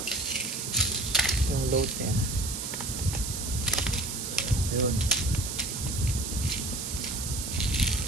yung load niya. Ayun.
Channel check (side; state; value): right; noise; hiss, 5 dB below the sound